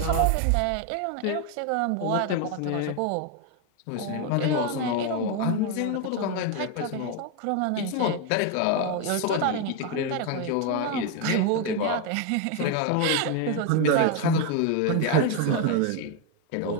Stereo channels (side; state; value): both; different; correlation 0.01